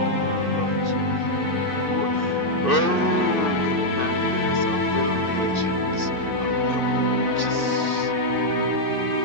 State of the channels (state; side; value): late; right; 2.6 ms